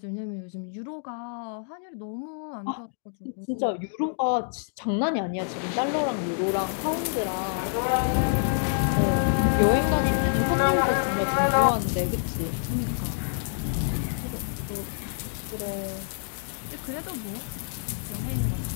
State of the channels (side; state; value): right; silent; digital silence